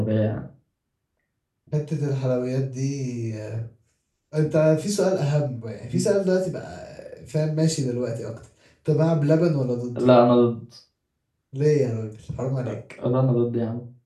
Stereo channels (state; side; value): identical; both; correlation 1.00